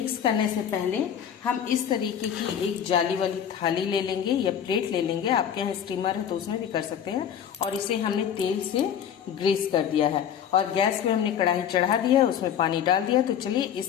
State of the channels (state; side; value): quieter; right; 8.9 dB